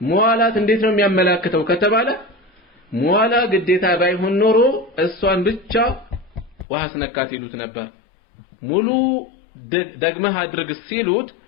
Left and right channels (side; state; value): right; drops out; at 6.7 s